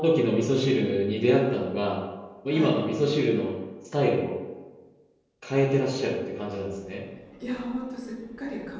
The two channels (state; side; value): identical; both; correlation 1.00